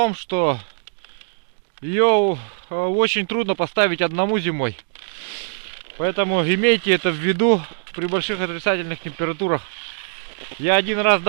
что ее очень трудно поставить одному зимой. Поэтому имейте это в виду при больших отрицательных температурах. Я один раз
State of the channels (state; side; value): silent; left; digital silence